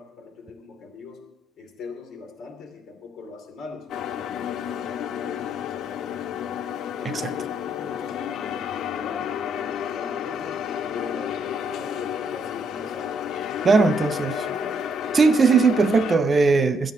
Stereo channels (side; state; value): both; normal; correlation 0.73